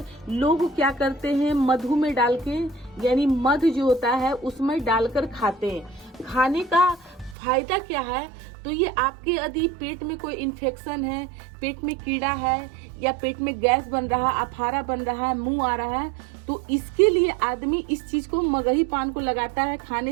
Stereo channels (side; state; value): left; drops out; at 7.4 s